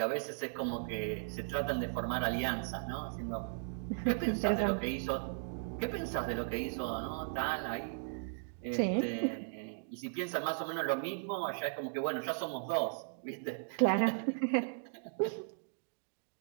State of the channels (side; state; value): left; silent; digital silence